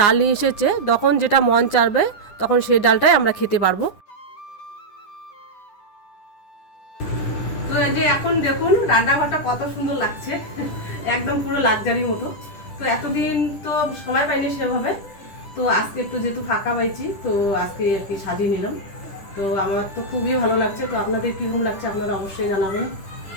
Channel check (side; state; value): right; late; 10 ms